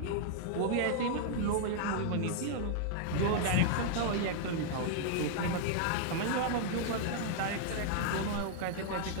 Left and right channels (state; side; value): different; both; correlation 0.00